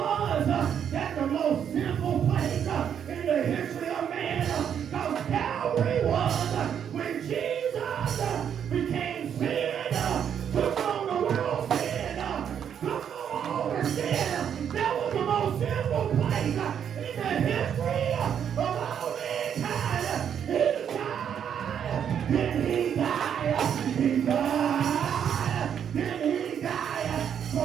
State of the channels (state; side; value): quieter; left; 8.5 dB